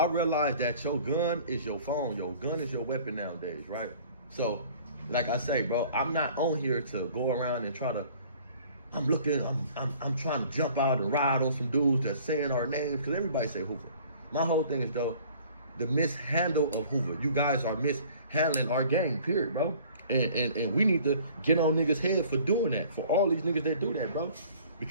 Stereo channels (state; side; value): inverted; both; correlation -0.51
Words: realize that your gun is your phone. Your gun is your weapon nowadays, right? So, like I say, bro, I'm not on here to go around and try to. I'm trying to jump out and ride on some dudes that's saying our names because everybody say Hoover. My whole thing is though, the mishandle of Hoover. You guys are mishandling our game, period, bro. And we need to get on niggas' head for doing that. For all these niggas that do that, bro.